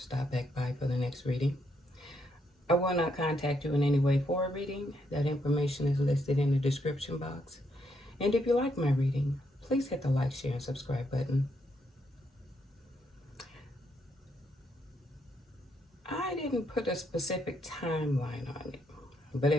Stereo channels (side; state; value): both; normal; correlation 0.77